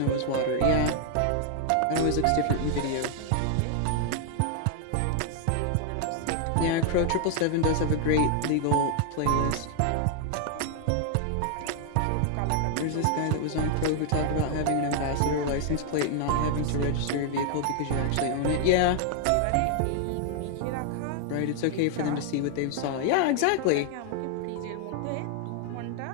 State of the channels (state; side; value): different; both; correlation 0.00